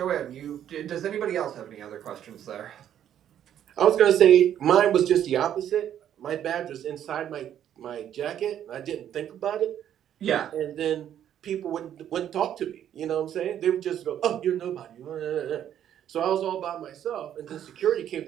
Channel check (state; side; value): quieter; left; 10.3 dB